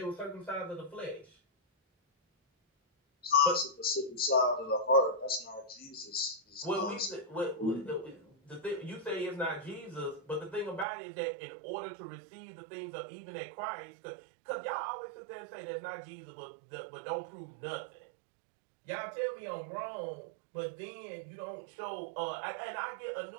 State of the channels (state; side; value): drops out; left; at 10.9 s